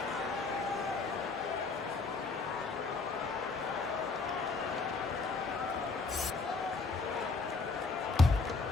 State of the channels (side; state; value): right; quieter; 4.1 dB